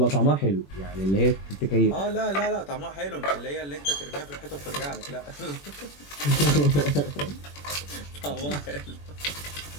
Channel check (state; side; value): late; right; 21 ms